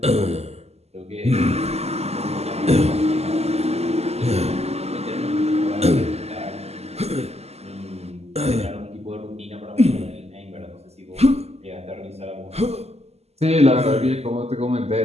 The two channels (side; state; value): left; late; 0.30 ms